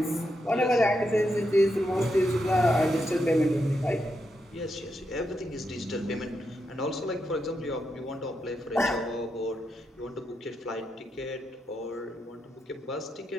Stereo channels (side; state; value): both; normal; correlation 0.83